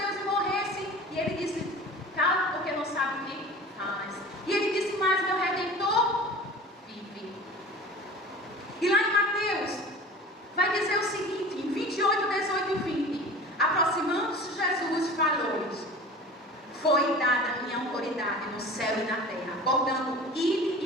e morresse, e ele disse: cala, porque não sabe o que faz. E ele disse: mas meu Redentor vive. E lá em Mateus vai dizer o seguinte, em 28, 18 e 20: aproximando-se Jesus falou-lhes: foi dada a minha autoridade no céu e na terra, portanto, ide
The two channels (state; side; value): normal; both; correlation 0.39